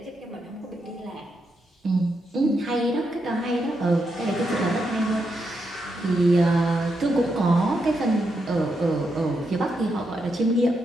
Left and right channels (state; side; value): normal; both; correlation 0.83